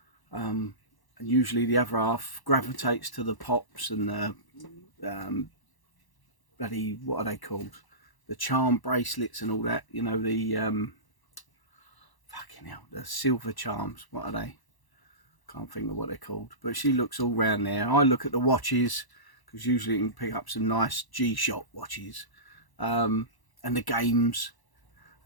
and usually the other half gravitates to the pops and the bloody, what are they called, the charm bracelets and all that, the fucking hell, the silver charms, what are they? Can't think of what they're called. But she looks all round there. I look at the watches, because usually you can pick up some nice G-Shock watches, and the games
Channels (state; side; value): late; right; 1.0 ms